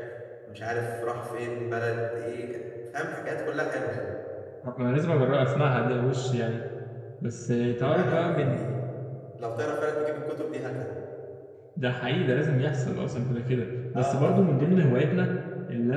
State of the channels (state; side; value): identical; both; correlation 1.00